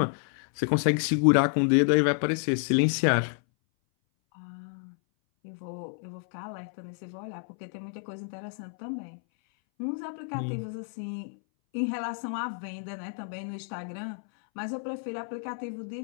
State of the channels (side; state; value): right; silent; 58 dB below the other